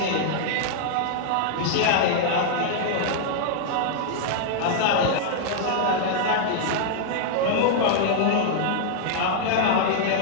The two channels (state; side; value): different; both; correlation -0.01